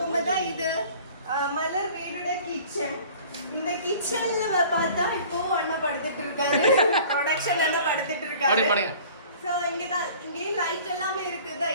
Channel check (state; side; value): inverted; both; correlation -0.47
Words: இது மலர் வீடோட கிச்சன். இந்த கிச்சன்ல பார்த்தா இப்போ அண்ணா படுத்துட்டு இருக்காரு. ப்ரொடக்ஷன் அண்ணா படுத்துட்டு இருக்காரு. ஸோ இங்கே லைட் எல்லாமே இருக்குது.